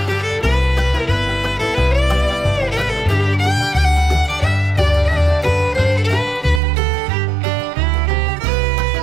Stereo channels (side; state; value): left; drops out; at 6.6 s